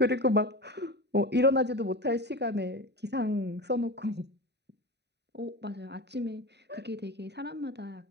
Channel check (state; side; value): late; left; 0.49 ms